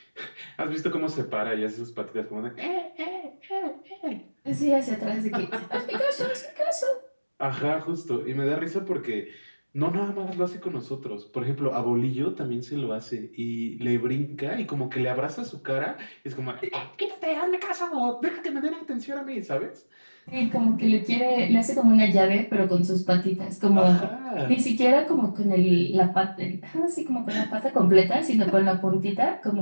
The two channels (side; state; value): both; inverted; correlation -1.00